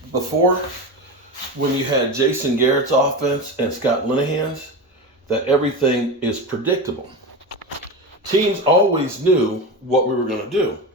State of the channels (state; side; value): normal; both; correlation 0.22